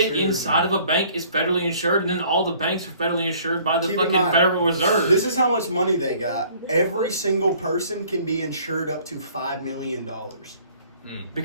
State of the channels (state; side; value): inverted; both; correlation -0.56